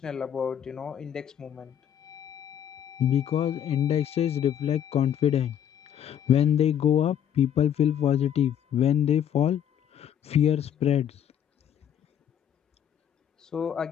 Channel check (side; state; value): right; quieter; 9.6 dB